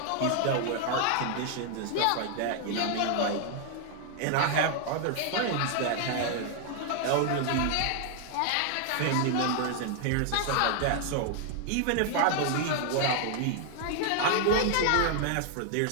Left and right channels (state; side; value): different; both; correlation 0.00